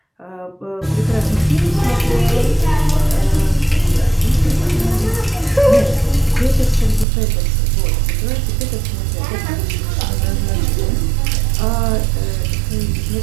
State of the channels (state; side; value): drops out; left; at 7.1 s